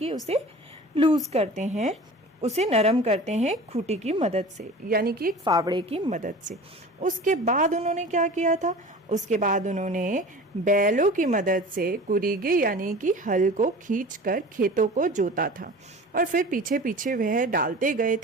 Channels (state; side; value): normal; both; correlation 0.39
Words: उसे लूज करते हैं, उसे नरम करते हैं खूंटी की मदद से, यानी कि एक फावड़े की मदद से। उसके बाद उन्होंने क्या किया था? उसके बाद उन्होंने बैलों की मदद से कुरीगे यानी कि हल को खींचकर खेतों को जोता था, और फिर पीछे पीछे वह डालते गए